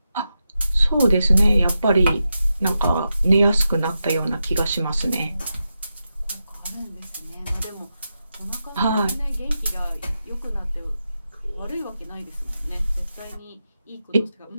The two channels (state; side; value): inverted; both; correlation -0.89